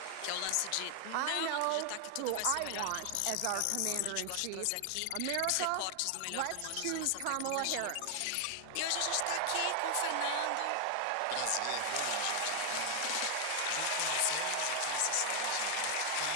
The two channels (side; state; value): both; different; correlation 0.00